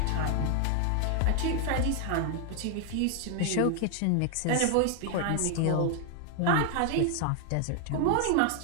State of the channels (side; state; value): both; different; correlation 0.00